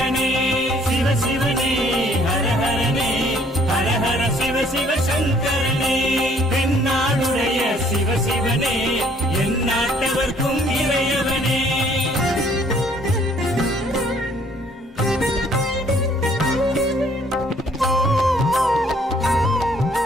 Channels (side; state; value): both; normal; correlation 0.61